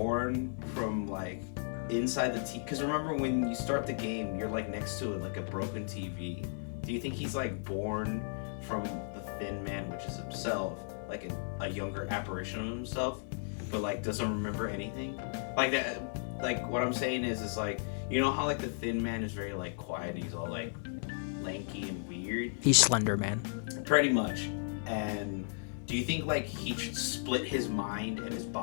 from like inside the TV? Because remember when you start the game, you're like next to it like a broken TV. Do you think he's like born from the Thin Man, which is himself, like a younger apparition of himself, but like doesn't remember anything? Like that. Like what I'm saying is like, you know how like the Thin Man is very like quiet and he's all like lanky and weird. He's Slender Man. Pretty much. And do you think like he split his mind and his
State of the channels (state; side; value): silent; right; 55 dB below the other